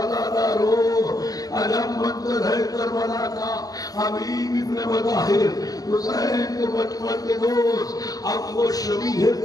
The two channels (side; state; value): right; late; 0.18 ms